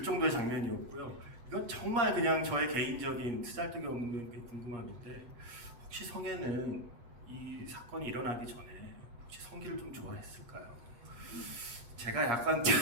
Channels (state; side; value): late; left; 8.5 ms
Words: 정도의 장면이었고요. 이건 정말 그냥 저의 개인적인 쓰잘데기 없는 그 궁금함인데 혹시 성애는 이 사건이 일어나기 전에 혹시 성기를 좀 좋아했을까요? 제가 약간